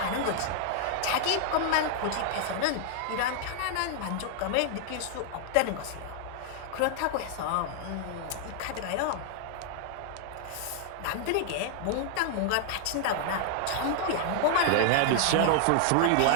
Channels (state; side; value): different; both; correlation -0.01